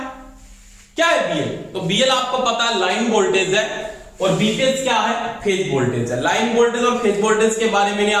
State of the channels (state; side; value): identical; both; correlation 1.00